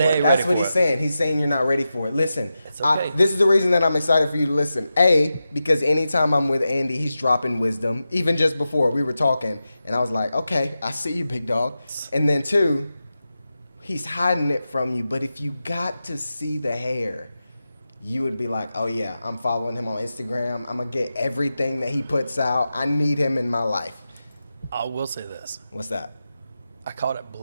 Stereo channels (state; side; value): inverted; both; correlation -0.91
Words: it. That's what he's saying. He's saying you're not ready for it. Listen, it's okay. This is the reason that I'm excited for you to listen. A, because anytime I'm with Andy, he's dropping wisdom. Even just before, we were talking, and I was like, okay, I see you, big dog. And then two, he's hiding it from you. But if you got to see the hair, you would be like, oh, yeah, I'm following him on Instagram. I'm going to get everything that he puts out. I need him in my life. I will say this. What's that? I caught it